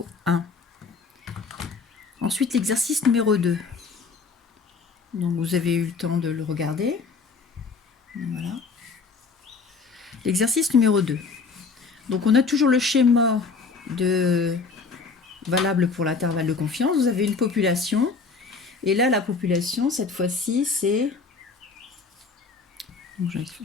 1. Ensuite, l'exercice numéro 2. Donc vous avez eu le temps de le regarder. Donc, voilà. L'exercice numéro 2. Donc on a toujours le schéma valable pour l'intervalle de confiance. Vous avez une population. Et là, la population, cette fois-ci, c'est... Donc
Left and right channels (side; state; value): right; quieter; 4.7 dB